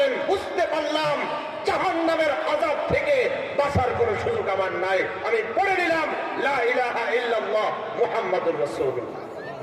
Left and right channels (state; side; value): identical; both; correlation 1.00